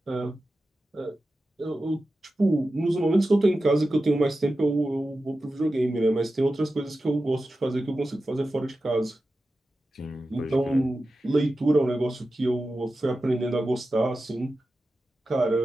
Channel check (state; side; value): normal; both; correlation 0.93